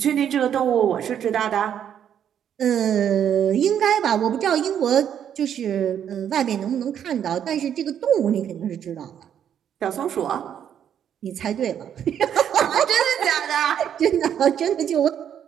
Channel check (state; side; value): quieter; left; 9.2 dB